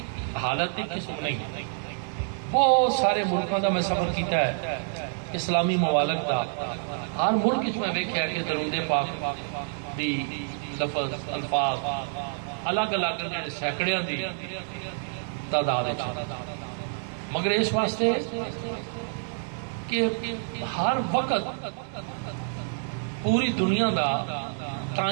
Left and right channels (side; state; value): left; silent; digital silence